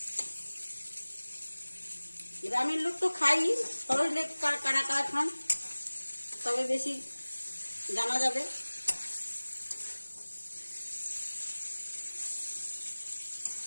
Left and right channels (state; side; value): inverted; both; correlation -1.00